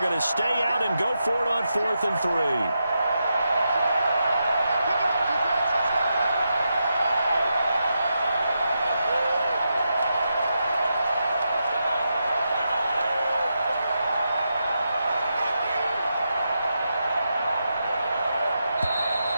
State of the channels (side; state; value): both; inverted; correlation -0.86